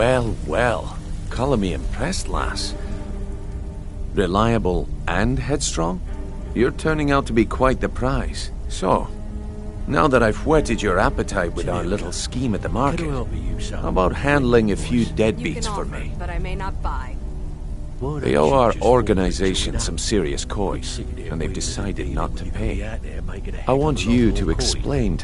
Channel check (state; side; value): identical; both; correlation 1.00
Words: well. Colour me impressed, lass. Reliable and headstrong? You're turning out to be quite the prize. So, now that I've whetted your appetite with our little scheme at the market, how about handling a few deadbeats for me? But I may not buy. They owe our organization some serious coin, and they've decided not to pay. I want you to explain